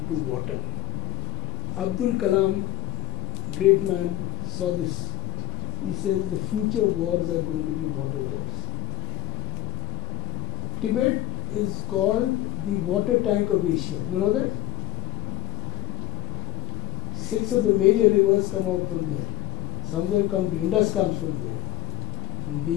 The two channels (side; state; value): right; quieter; 15.5 dB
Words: to water. Abdul Kalam, great man, saw this. He says the future wars are going to be water wars. Tibet is called the water tank of Asia. You know that? 6 of the major rivers come out from there. Some of them come to Indus comes from there.